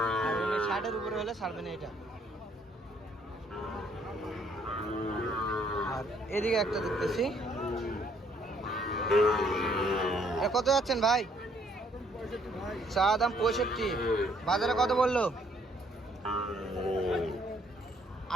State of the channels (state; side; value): normal; both; correlation 0.66